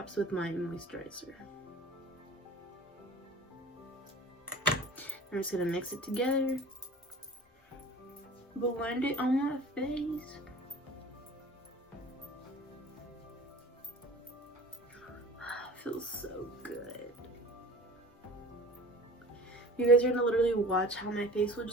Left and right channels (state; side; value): normal; both; correlation 0.42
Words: with my moisturizer. I'm just gonna mix it together, blend it on my face. Feels so good. You guys are gonna literally watch how my face will